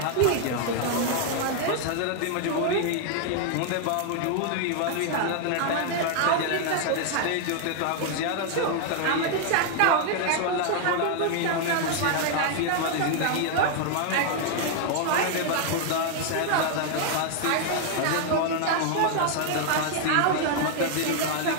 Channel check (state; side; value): different; both; correlation 0.00